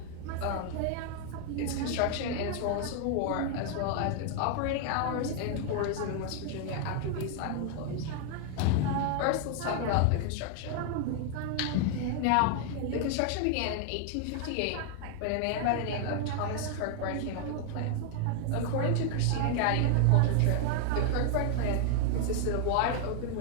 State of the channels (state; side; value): different; both; correlation 0.00